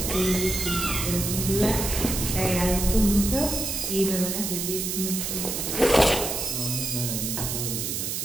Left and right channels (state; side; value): noise; right; hiss, 2 dB below the sound